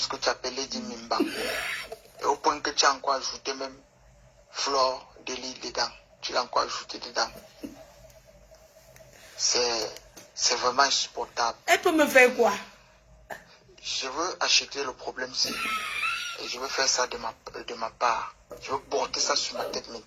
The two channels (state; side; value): identical; both; correlation 1.00